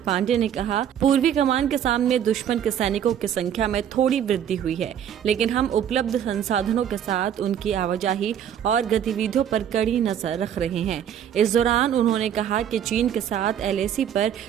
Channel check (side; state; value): left; quieter; 9.5 dB